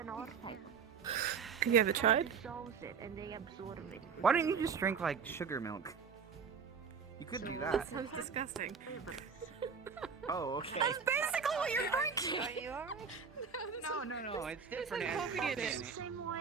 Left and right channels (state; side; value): quieter; left; 6.1 dB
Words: our type. Have you ever tried? Dissolves it and they absorb it. Why don't you just drink like sugar milk? You could do that. sounds disgusting. Oh, okay. Basically what you're drinking! Are you alright? No, it's different. different. It has coffee in it. Same